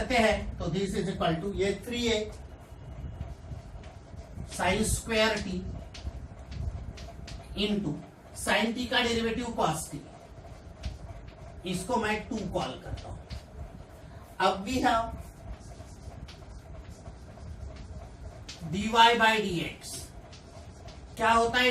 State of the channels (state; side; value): identical; both; correlation 1.00